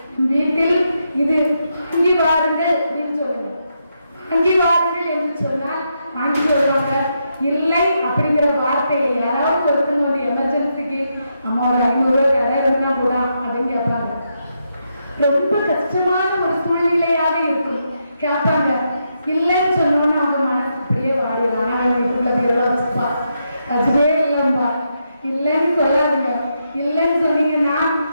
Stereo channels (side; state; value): both; inverted; correlation -0.82